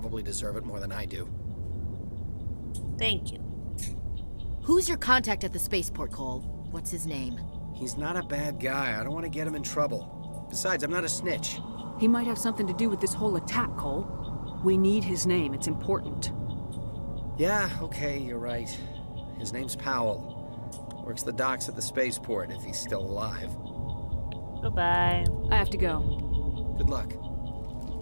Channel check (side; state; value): both; inverted; correlation -1.00